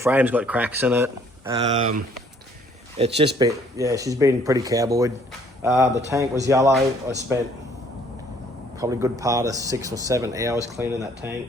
got cracks in it. It's just been, yeah, she's been pretty cowboyed. The tank was yellow. I spent probably a good part of 6 or 7 hours cleaning that tank,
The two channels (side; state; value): both; normal; correlation 0.61